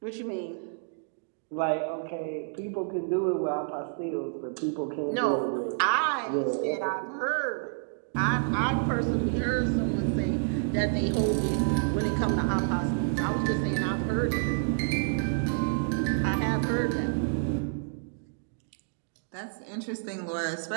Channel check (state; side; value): silent; left; digital silence